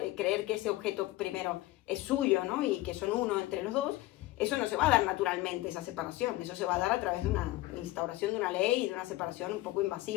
creer que ese objeto primero es suyo, ¿no? Y que son uno entre los dos, eso no se va a dar naturalmente, esa separación, eso se va a dar a través de una instauración de una ley y de una separación un poco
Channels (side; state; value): right; quieter; 17.8 dB